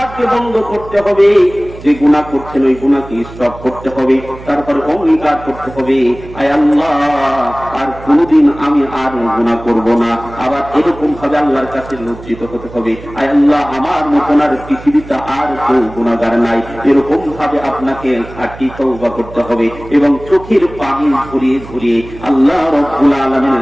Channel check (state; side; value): noise; right; hum, 16 dB below the sound